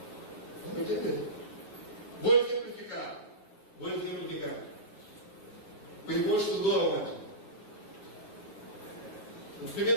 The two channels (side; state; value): right; late; 8.9 ms